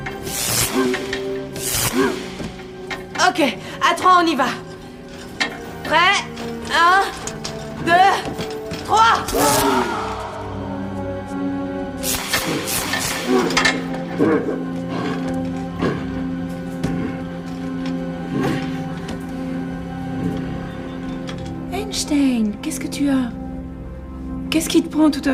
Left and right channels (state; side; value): identical; both; correlation 1.00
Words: Ok, à 3, on y va. Prêt? 1, 2, 3. Einstein, qu'est-ce que tu as? Qu'est-ce qui te prend tout